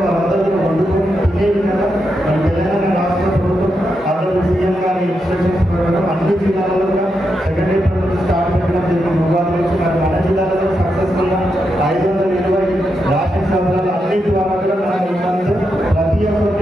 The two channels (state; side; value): normal; both; correlation 0.84